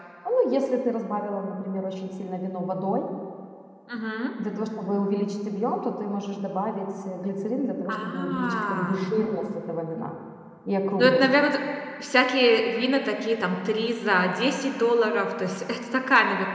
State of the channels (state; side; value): identical; both; correlation 1.00